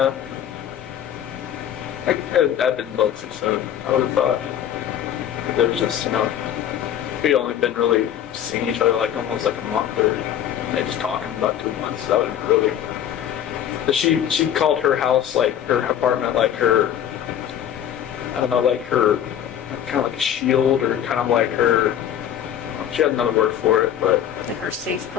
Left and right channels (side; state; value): right; quieter; 10.2 dB